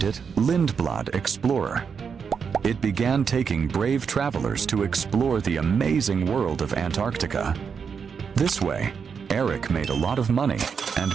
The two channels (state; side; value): quieter; left; 6.3 dB